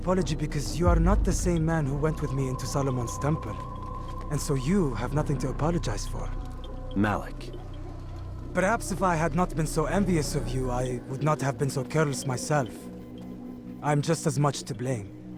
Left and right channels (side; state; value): both; identical; correlation 1.00